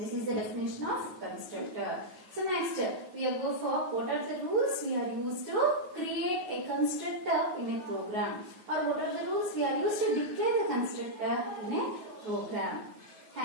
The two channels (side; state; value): left; late; 9.4 ms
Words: is the definition of constructor. So next, we will go for what are the rules we are used to create a constructor in a program, or what are the rules we are used to declare the constructor in a program.